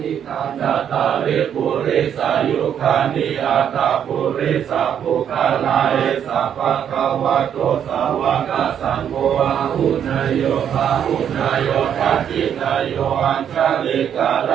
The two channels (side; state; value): left; quieter; 8.9 dB